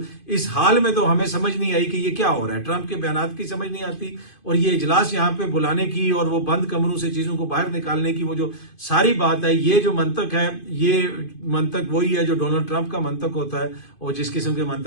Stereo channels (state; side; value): late; right; 2.5 ms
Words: इस हाल में तो हमें समझ नहीं आई कि ये क्या हो रहा है। ट्रंप के बयानात की समझ नहीं आती, और ये इजलास यहाँ पे बुलाने की और वो बंद कमरों से चीजों को बाहर निकालने की वो जो सारी बात है, ये जो मंतक है, ये मंतक वही है जो डोनाल्ड ट्रंप का मंतक होता है और जिस किस्म के